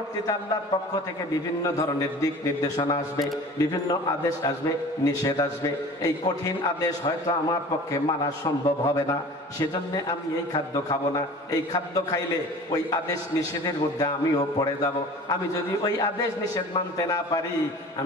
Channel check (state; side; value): normal; both; correlation 0.42